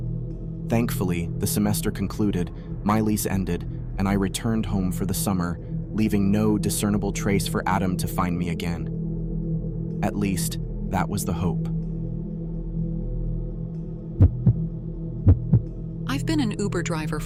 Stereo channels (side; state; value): both; identical; correlation 1.00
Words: Thankfully, the semester concluded, my lease ended, and I returned home for the summer, leaving no discernible trace for Adam to find me again. At least, that was the hope. I've been an Uber driver